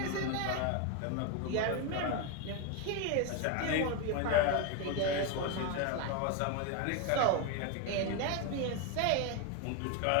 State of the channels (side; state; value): both; different; correlation 0.02